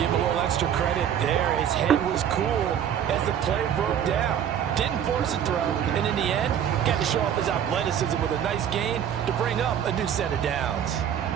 him a little extra credit there. His head was cool as the play broke down. Didn't force a throw, and in the end, got to show off his athleticism with a nice gain to bring up a new set of downs.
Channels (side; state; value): left; quieter; 9.3 dB